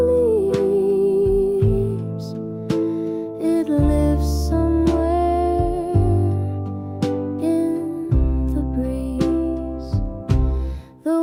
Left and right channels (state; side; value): identical; both; correlation 1.00